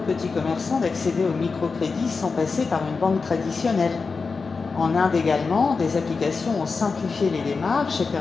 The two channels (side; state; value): right; quieter; 4.6 dB